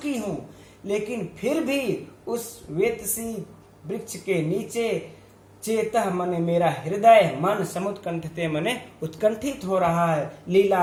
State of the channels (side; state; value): both; identical; correlation 1.00